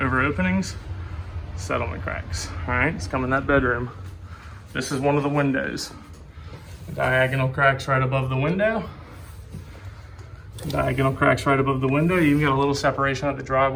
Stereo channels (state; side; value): identical; both; correlation 1.00